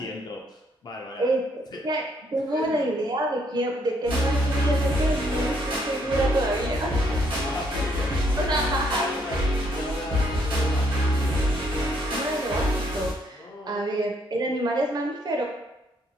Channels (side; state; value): both; normal; correlation 0.70